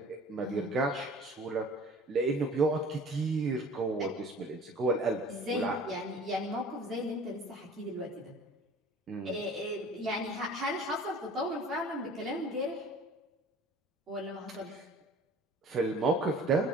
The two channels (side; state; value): both; normal; correlation 0.46